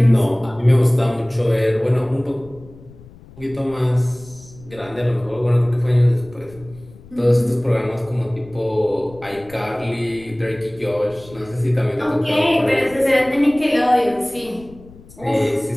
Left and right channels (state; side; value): noise; left; rumble, 22 dB below the sound